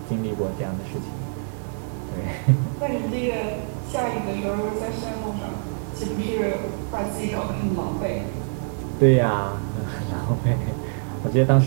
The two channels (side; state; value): left; silent; digital silence